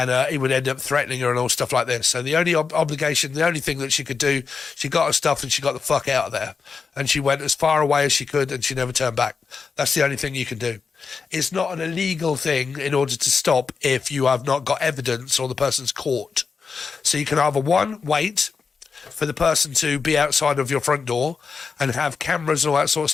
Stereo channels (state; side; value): quieter; right; 5.2 dB